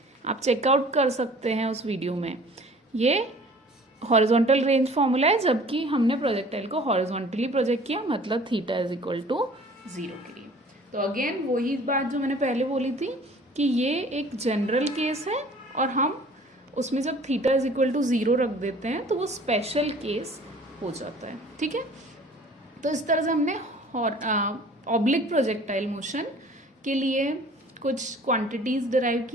आप चेकआउट कर सकते हैं उस वीडियो में। ये हॉरिजॉन्टल रेंज फॉर्मूला है जबकि हमने प्रोजेक्टाइल को हॉरिजॉन्टली प्रोजेक्ट किया, मतलब थीटा इज इक्वल टू 0 के लिए। तो अगेन वही बात जो मैंने पहले बोली थी कि ये एक जनरल केस है और हम उसमें जब थीटा इज इक्वल टू 0 रख देते हैं तो वो स्पेशल केस हो जाता है। ठीक है, तो इस तरह से हमने ऑब्लिक प्रोजेक्टाइल मोशन के लिए कुछ क्वांटिटीज डिराइव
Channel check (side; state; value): both; normal; correlation 0.49